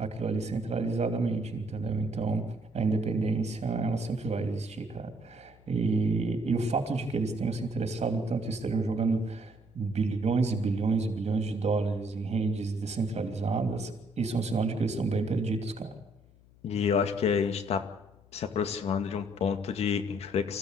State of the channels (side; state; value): left; noise; hum, 26 dB below the sound